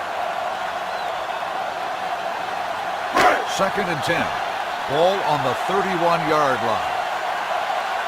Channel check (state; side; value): identical; both; correlation 1.00